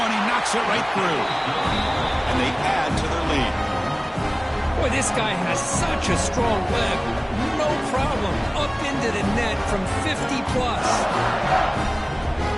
and he knocks it right through. And they add to their lead. Boy, this guy has such a strong leg. No problem. Up into the net from 50-plus.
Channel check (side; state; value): both; identical; correlation 1.00